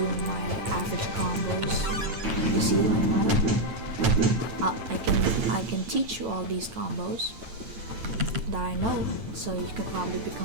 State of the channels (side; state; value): left; late; 9.1 ms